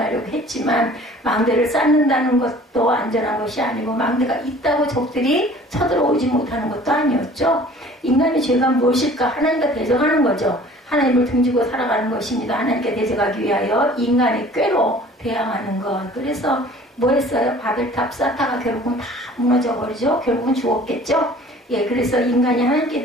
했지만 망대를 쌓는다는 것도 안전한 것이 아니고 망대가 있다고 적들이 쳐들어오지 못하는 것도 아니었죠. 인간의 죄가 무엇일까? 하나님과 대적하는 거죠. 하나님을 등지고 살아가는 것입니다. 하나님께 대적하기 위하여 인간의 꾀로 대항하는 것. 그래서 뭐 했어요? 바벨탑 쌓다가 결국은 다 무너져 버리죠. 결국은 죽었겠죠. 예, 그래서 인간이 하나님께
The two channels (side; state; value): both; normal; correlation 0.49